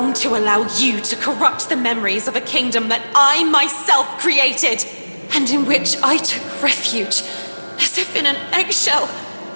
to allow you to corrupt the memories of a kingdom that I myself created, and in which I took refuge, as if in an eggshell,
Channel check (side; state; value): both; inverted; correlation -1.00